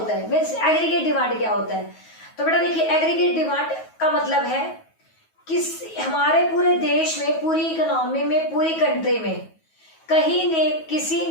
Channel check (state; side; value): late; right; 9.3 ms